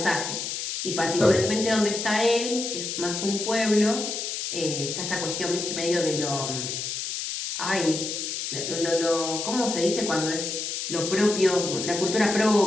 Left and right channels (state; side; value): noise; left; hiss, 4 dB below the sound